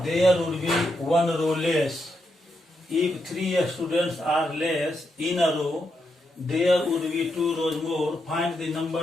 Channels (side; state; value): both; normal; correlation 0.82